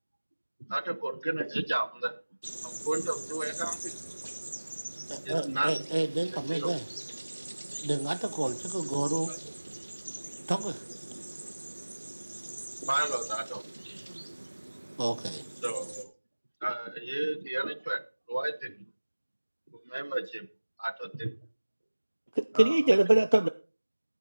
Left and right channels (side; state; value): both; inverted; correlation -1.00